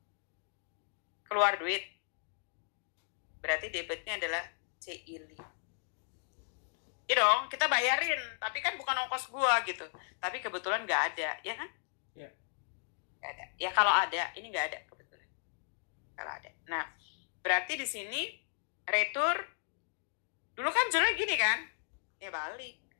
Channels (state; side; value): silent; right; digital silence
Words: Keluar duit. Berarti debitnya adalah CILI. Iya dong, kita bayarin, tapi kan bukan ongkos gua gitu. Tapi kebetulan nggak ada, ya kan? Iya. Nggak ada. Ya kalau ada, ini nggak ada kebetulan. Kalau ada. Nah, berarti di sini retur dulu kan jurnalnya gini kan? Ya balik.